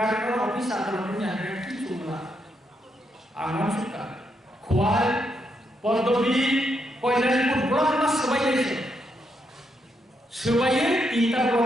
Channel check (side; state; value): both; normal; correlation 0.79